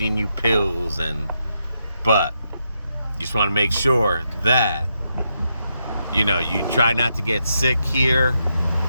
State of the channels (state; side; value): inverted; both; correlation -0.82